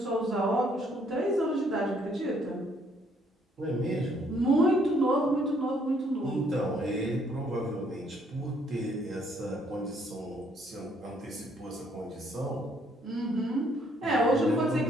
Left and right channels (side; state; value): both; normal; correlation 0.67